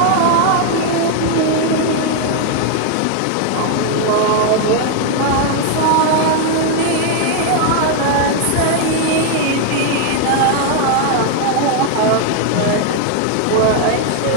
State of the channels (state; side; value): different; both; correlation 0.00